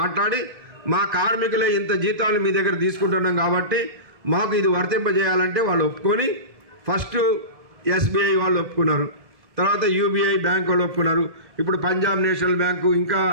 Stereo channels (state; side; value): late; left; 1.7 ms